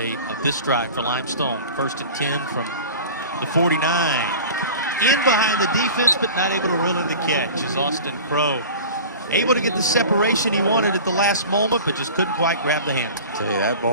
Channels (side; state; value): both; inverted; correlation -0.38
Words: of this drive for Limestone. 1st and 10 from the 49. In behind the defense, but not able to reel in the catch is Austin Crow. Able to get the separation he wanted at the last moment, but just couldn't quite grab the hand. I tell you, that